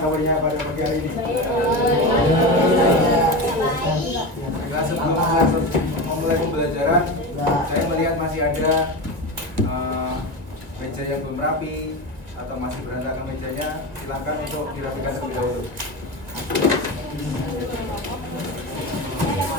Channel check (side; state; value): left; late; 2.2 ms